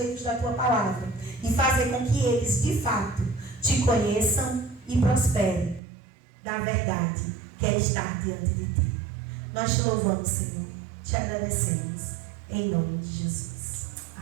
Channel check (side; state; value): left; drops out; at 5.8 s